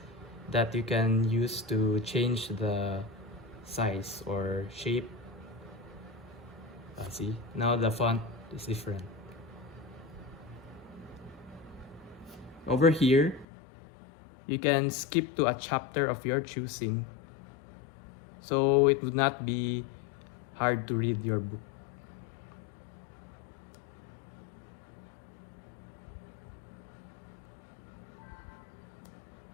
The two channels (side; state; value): right; drops out; at 13.5 s